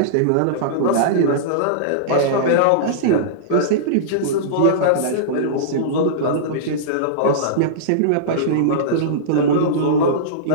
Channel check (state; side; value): different; both; correlation -0.03